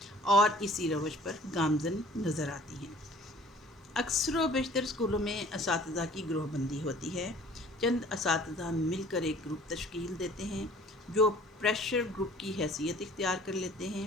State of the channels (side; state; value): both; normal; correlation 0.51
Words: اور اسی روش پر گامزن نظر آتی ہیں۔ اکثر و بیشتر اسکولوں میں اساتذہ کی گروہ بندی ہوتی ہے۔ چند اساتذہ مل کر ایک گروپ تشکیل دیتے ہیں جو پریشر گروپ کی حیثیت اختیار کر لیتے ہیں۔